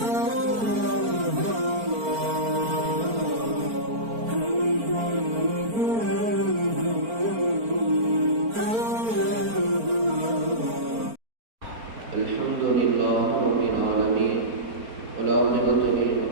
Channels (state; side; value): late; left; 4.4 ms